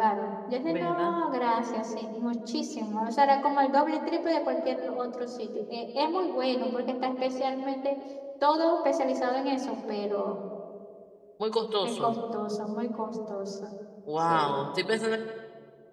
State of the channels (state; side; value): identical; both; correlation 1.00